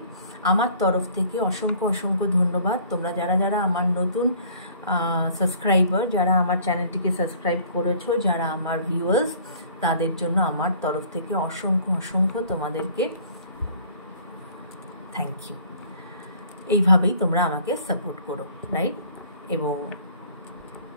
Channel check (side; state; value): both; inverted; correlation -0.53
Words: আমার তরফ থেকে অসংখ্য অসংখ্য ধন্যবাদ। তোমরা যারা যারা আমার নতুন সাবস্ক্রাইবার, যারা আমার চ্যানেলটিকে সাবস্ক্রাইব করেছো, যারা আমার ভিউয়ার্স, তাদের জন্য আমার তরফ থেকে অসংখ্য অসংখ্য তোমাদেরকে থ্যাংক ইউ। এইভাবেই তোমরা আমাকে সাপোর্ট করো, রাইট? এবং